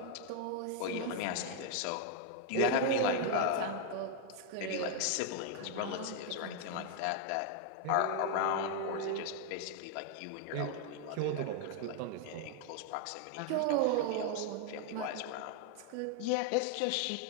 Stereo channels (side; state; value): both; different; correlation 0.00